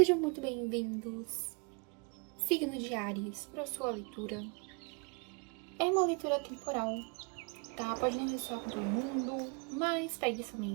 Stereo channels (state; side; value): quieter; left; 34.4 dB